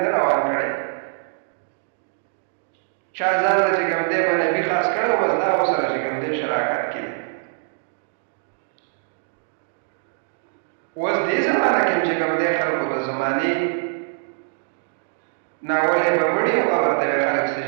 ده روان کړی. چا ځان له چې کوم دی به نبي خاص کړی و، بس دا ورسره چې کوم دی شراکت کې دی. اوس دې زمانه کې چې کوم دی خلکو د زمانې ناولی به مړي او قبر ته به خلک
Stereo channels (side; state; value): left; silent; digital silence